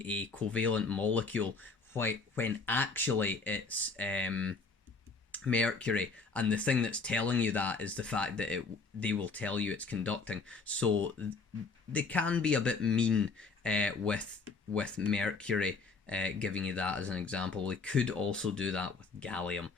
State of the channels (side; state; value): right; quieter; 4.3 dB